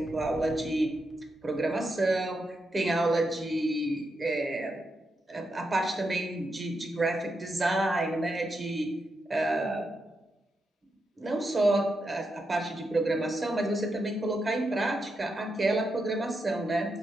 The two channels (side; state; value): both; normal; correlation 0.85